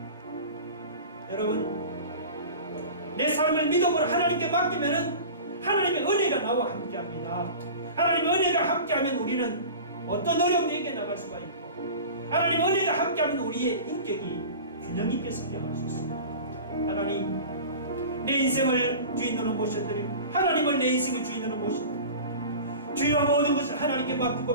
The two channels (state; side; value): inverted; both; correlation -0.36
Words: 여러분 내 삶을 믿음으로 하나님께 맡기면은 하나님의 은혜가 나와 함께합니다. 하나님의 은혜가 함께하면 우리는 어떤 어려움도 이겨나갈 수가 있고, 하나님의 은혜가 함께하면 우리의 인격이 균형 있게 성장할 수 있습니다. 하나님, 내 인생을 주인으로 모셔드리고 하나님을 내 인생의 주인으로 모셔드리고 주여 모든 것을 하나님께 맡기고